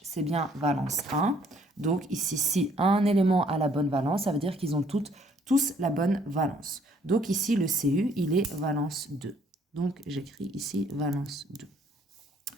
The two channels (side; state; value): both; normal; correlation 0.63